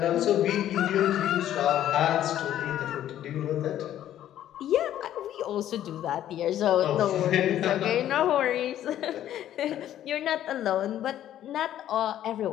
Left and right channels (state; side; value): quieter; right; 11.8 dB